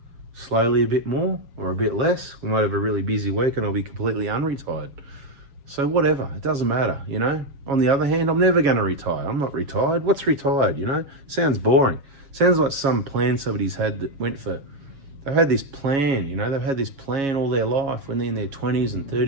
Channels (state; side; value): late; left; 7.4 ms